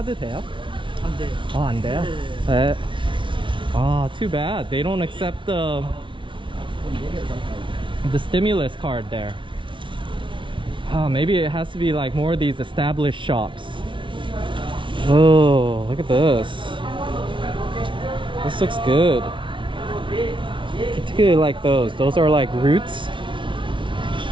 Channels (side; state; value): left; late; 0.24 ms